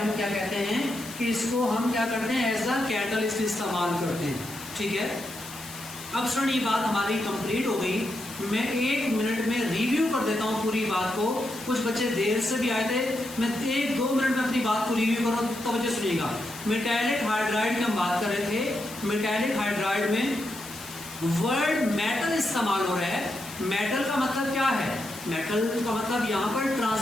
क्या कहते हैं कि इसको हम क्या करते हैं, एज अ कैटलिस्ट इस्तेमाल करते हैं। ठीक है, अब सुन, ये बात हमारी कंप्लीट हो गई। मैं 1 मिनट में रिव्यू कर देता हूँ पूरी बात को। कुछ बच्चे देर से भी आए थे, मैं 1-2 मिनट में अपनी बात को रिव्यू करूँ तो बच्चे सुनिएगा। मेटेलिक हाइड्राइड की हम बात कर रहे थे। मेटेलिक हाइड्राइड में वर्ड मेटल इस्तेमाल हो रहा है। मेटल का मतलब क्या है, मेटल का मतलब यहाँ पर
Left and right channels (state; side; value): noise; left; hiss, 14 dB below the sound